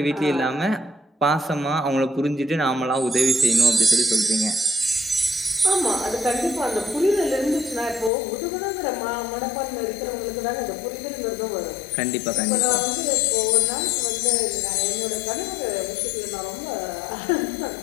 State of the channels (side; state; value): right; drops out; at 8.1 s